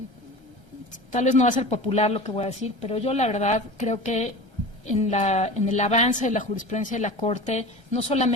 Tal vez no va a ser popular lo que voy a decir, pero yo la verdad creo que en el avance de la jurisprudencia de la Corte no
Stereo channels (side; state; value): left; late; 1.3 ms